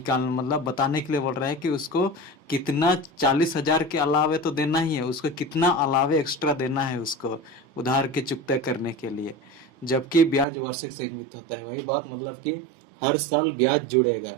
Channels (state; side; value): drops out; left; at 10.5 s